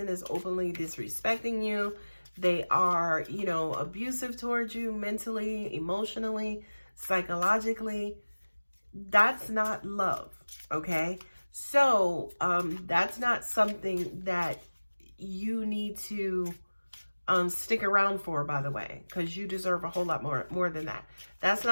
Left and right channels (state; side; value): inverted; both; correlation -1.00